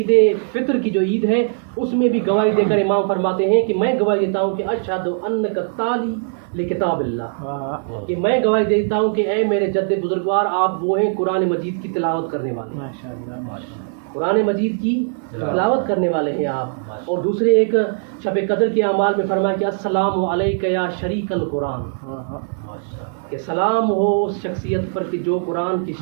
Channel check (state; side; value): silent; left; 63 dB below the other